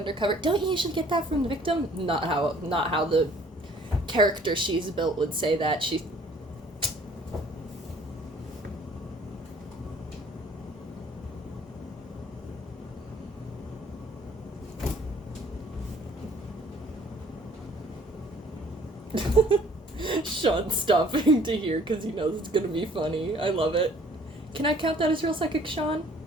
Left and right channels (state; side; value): normal; both; correlation 0.56